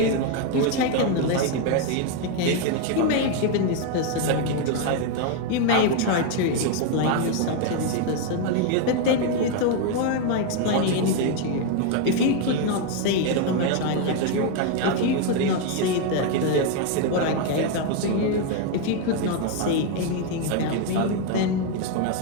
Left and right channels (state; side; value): different; both; correlation 0.01